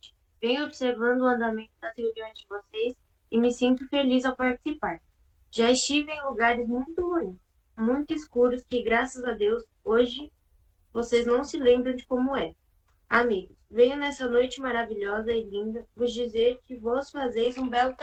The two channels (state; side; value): identical; both; correlation 1.00